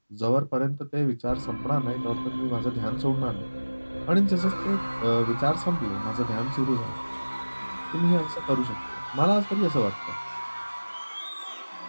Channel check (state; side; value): inverted; both; correlation -1.00